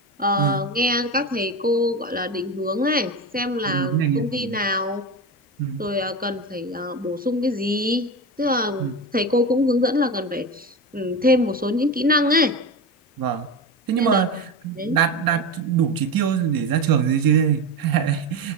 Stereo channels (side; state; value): both; normal; correlation 0.22